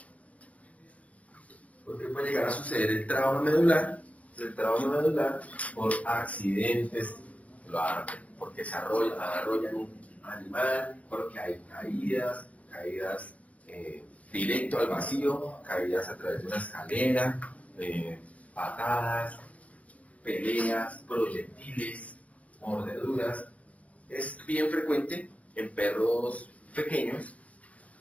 ¿Por qué puede llegar a suceder el trauma medular? El trauma medular por accidentes, porque se arrollan un animal, porque hay caídas directo al vacío, caídas a través de una escalera, patadas, peleas, proyectiles, mordeduras. Es bien frecuente en perros pequeños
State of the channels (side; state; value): right; late; 0.067 ms